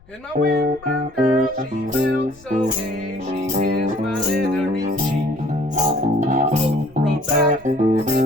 And my windburned girl, she felt so gay, she kissed my leathery cheek. Both rode back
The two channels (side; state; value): left; noise; rumble, 26 dB below the sound